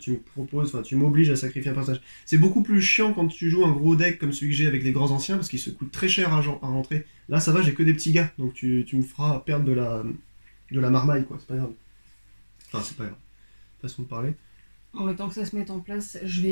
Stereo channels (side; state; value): both; inverted; correlation -1.00